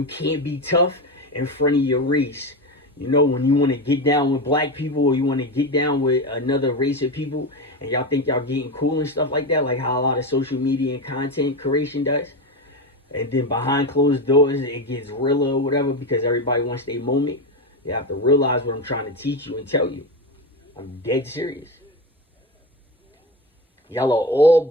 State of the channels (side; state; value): both; normal; correlation 0.18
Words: can't be tough in front of your race. You know, when you want to get down with black people, or you want to get down with another race of people, and y'all think y'all getting cool and stuff like that, like how a lot of social media and content creation does. And then behind closed doors, it gets realer or whatever, because everybody wants their moment. You have to realize what I'm trying to teach you and tell you. I'm dead serious. Y'all are all